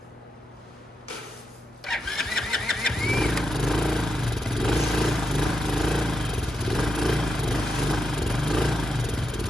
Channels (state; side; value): normal; both; correlation 0.83